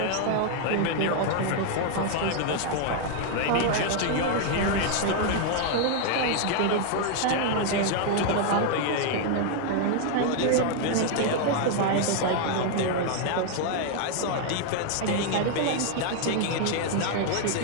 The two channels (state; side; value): different; both; correlation 0.00